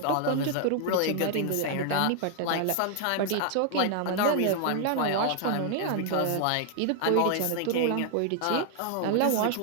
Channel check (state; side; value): different; both; correlation 0.00